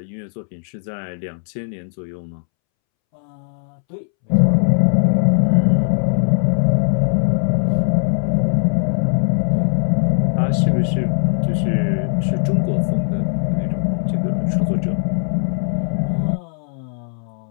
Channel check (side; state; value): right; silent; 66 dB below the other